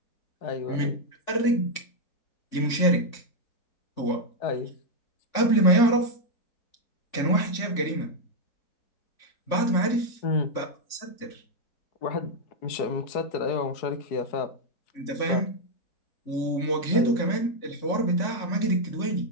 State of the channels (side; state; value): right; late; 3.6 ms